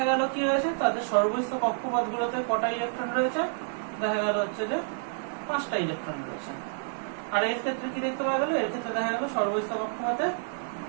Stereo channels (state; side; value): silent; left; digital silence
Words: গেল কি রয়েছে, তাদের সর্বস্থ কক্ষপথ গুলোতে কটা ইলেকট্রন রয়েছে, দেখা গেল হচ্ছে যে 5টা ইলেকট্রন রয়েছে। আর এর ক্ষেত্রে কি দেখতে পাওয়া গেল, এর ক্ষেত্রে দেখা গেল সর্বস্থ কক্ষপথে